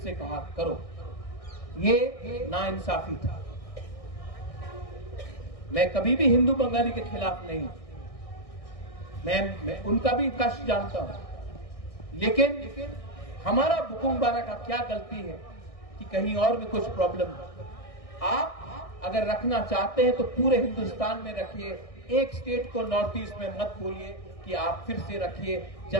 कहा करो। ये नाइंसाफी था। मैं कभी भी हिंदू बंगाली के खिलाफ नहीं, मैं उनका भी कष्ट जानता हूं। लेकिन हमारा बुकुंगबारा का क्या गलती है कि कहीं और में कुछ प्रॉब्लम है। आप अगर रखना चाहते हैं तो पूरे हिंदुस्तान में रखिए, एक स्टेट को नॉर्थ ईस्ट में मत बोलिए कि आप फिर से रखिए,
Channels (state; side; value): late; right; 1.6 ms